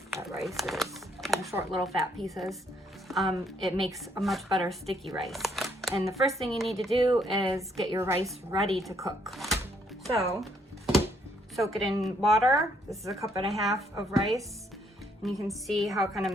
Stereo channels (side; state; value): both; normal; correlation 0.69